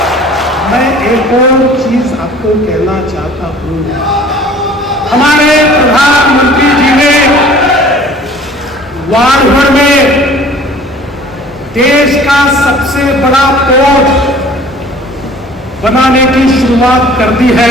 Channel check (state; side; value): normal; both; correlation 0.49